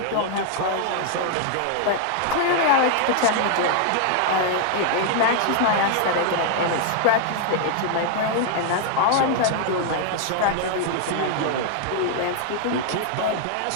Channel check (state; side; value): different; both; correlation 0.00